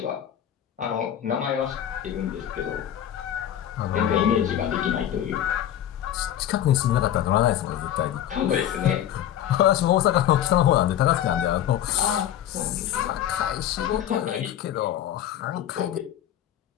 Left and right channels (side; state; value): right; quieter; 11.0 dB